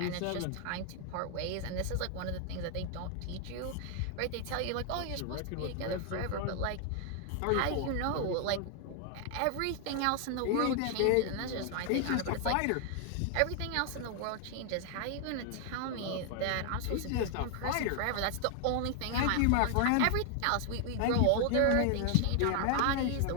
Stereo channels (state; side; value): different; both; correlation 0.00